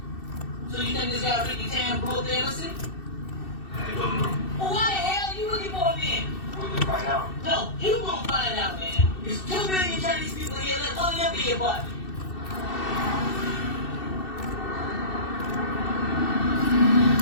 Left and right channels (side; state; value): right; late; 2.6 ms